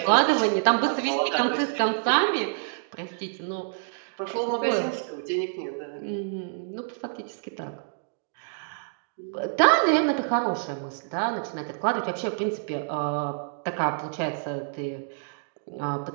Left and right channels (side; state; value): left; silent; digital silence